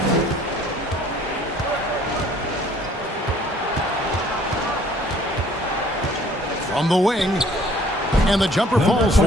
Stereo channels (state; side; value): normal; both; correlation 0.57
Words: From the wing. And the jumper falls for